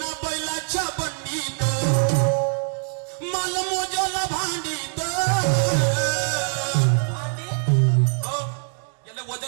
बैलाच्या बंडीत मला मोजाला भांडीत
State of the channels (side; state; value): left; silent; 59 dB below the other